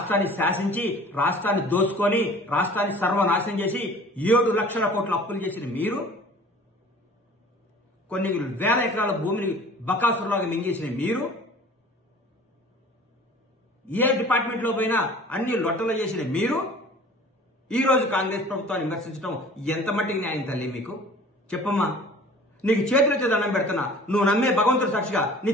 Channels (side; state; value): both; normal; correlation 0.46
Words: శాసించి, రాష్ట్రాన్ని దోచుకొని, రాష్ట్రాన్ని సర్వనాశనం చేసి 7 లక్షల కోట్ల అప్పులు చేసిన మీరు, కొన్ని వేల ఎకరాల భూమిని బకాసురులాగా మింగేసిన మీరు, ఏ డిపార్ట్మెంట్ లో పోయినా అన్ని లొట్టలు చేసిన మీరు, ఈ రోజు కాంగ్రెస్ ప్రభుత్వాన్ని విమర్శించడం ఎంత మట్టికి న్యాయం తల్లి మీకు? చెప్పమ్మా. నీకు చేతులెత్తి దండం పెడుతున్నా, నువ్వు నమ్మే భగవంతుడు సాక్షిగా, నీ